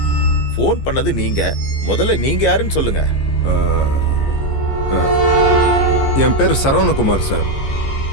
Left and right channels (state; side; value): late; right; 15 ms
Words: ஃபோன் பண்ணது நீங்க. முதல்ல நீங்க யாருன்னு சொல்லுங்க. என் பேர் சரவணகுமார் சார்.